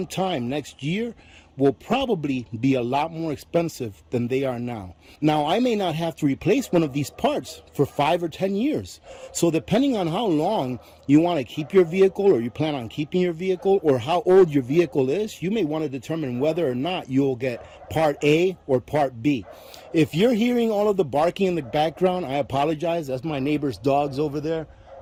time next year will probably be a lot more expensive than they are now. Now, I may not have to replace one of these parts for 5 or 10 years. So depending on how long you want to keep your vehicle, or you plan on keeping your vehicle, or how old your vehicle is, you may want to determine whether or not you'll get part A or part B. If you're hearing all of the barking in the background, I apologize. That's my neighbor's dogs over there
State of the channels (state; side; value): identical; both; correlation 1.00